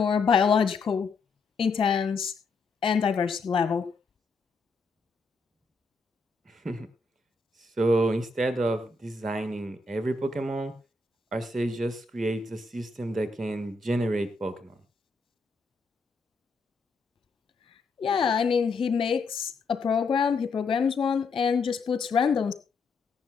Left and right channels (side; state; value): right; quieter; 3.7 dB